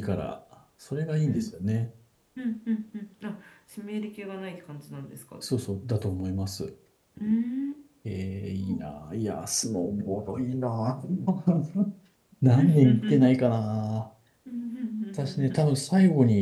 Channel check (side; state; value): both; identical; correlation 1.00